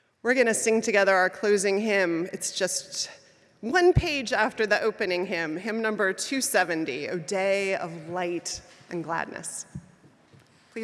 We're going to sing together our closing hymn. It's just one page after the opening hymn, hymn number 270, O Day of Light and Gladness.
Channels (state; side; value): identical; both; correlation 1.00